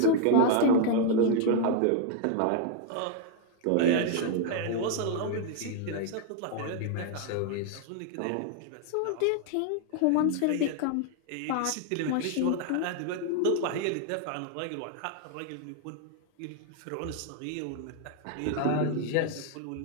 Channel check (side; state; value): both; different; correlation 0.00